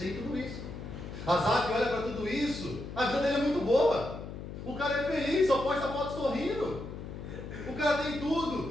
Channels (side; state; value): left; noise; hum, 9 dB below the sound